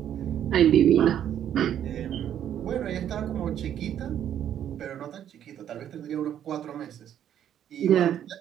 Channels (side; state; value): left; quieter; 10.2 dB